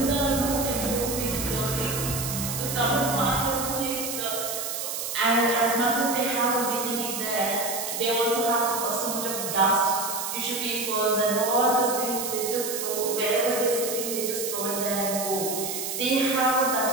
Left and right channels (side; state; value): right; noise; hiss, 4 dB below the sound